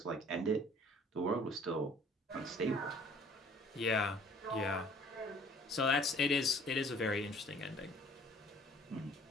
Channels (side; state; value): both; normal; correlation 0.54